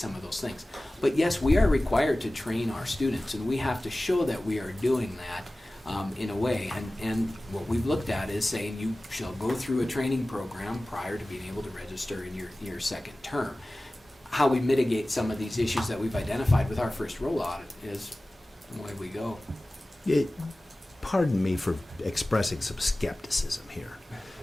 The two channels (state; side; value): normal; both; correlation 0.97